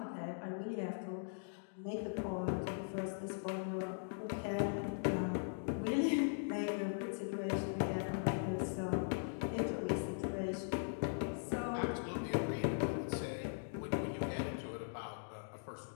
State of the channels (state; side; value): silent; right; digital silence